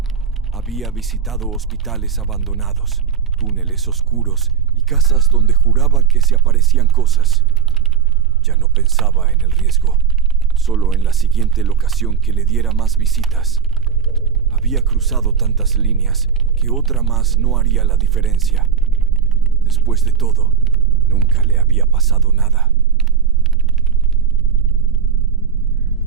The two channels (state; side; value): quieter; left; 7.2 dB